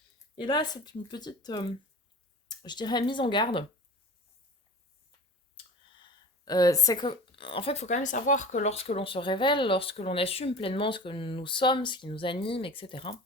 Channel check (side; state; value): both; normal; correlation 0.38